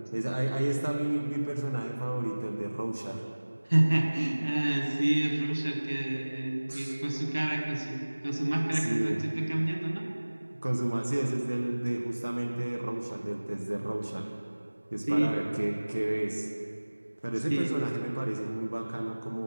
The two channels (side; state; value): both; inverted; correlation -1.00